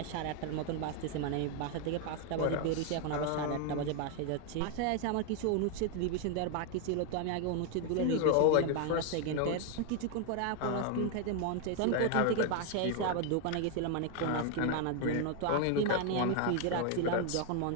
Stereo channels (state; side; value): different; both; correlation 0.01